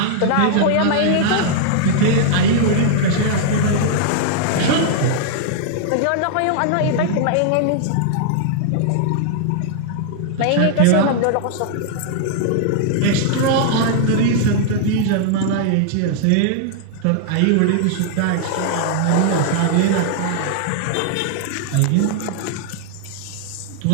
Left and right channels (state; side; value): different; both; correlation -0.01